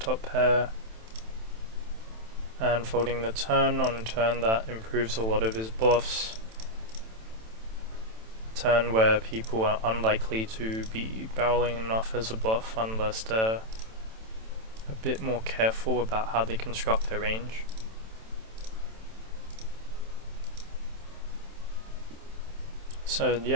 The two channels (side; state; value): left; late; 27 ms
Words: pair and folding the turn on a turn that improves a lot of his bluffs. Turn where people are unlikely to be barreling enough as a bluff unless they're a bit more careful about how they construct their range. So